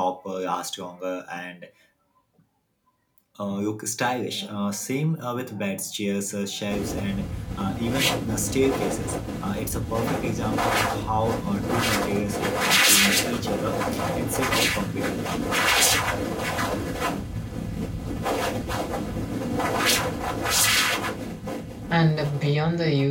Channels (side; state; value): both; identical; correlation 1.00